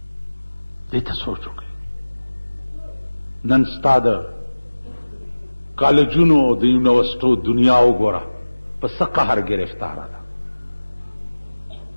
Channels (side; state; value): both; inverted; correlation -1.00